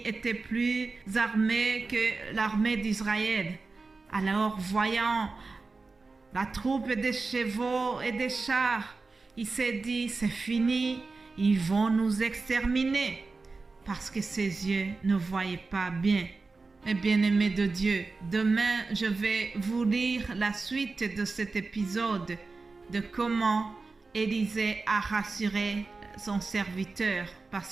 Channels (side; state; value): left; quieter; 3.9 dB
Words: étaient plus armés que l'armée d'Israël. Alors, voyant la troupe des chevaux et des chars, il s'est dit, c'est fini, ils vont nous exterminer, parce que ses yeux ne voyaient pas bien. Mes bien-aimés de Dieu, demain, je vais vous lire la suite de cet épisode de comment Élisée a rassuré son serviteur